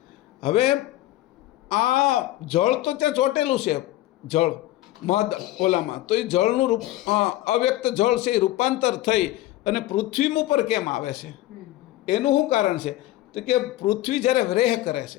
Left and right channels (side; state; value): right; quieter; 15.6 dB